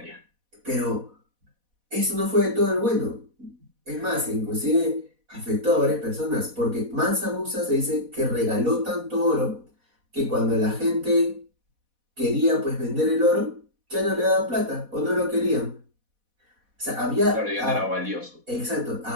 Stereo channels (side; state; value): left; late; 4.1 ms